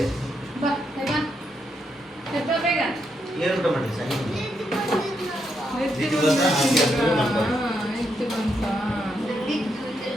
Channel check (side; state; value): both; normal; correlation 0.80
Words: ಏನು ಊಟ ಮಾಡಿ ಸಂಗೀತ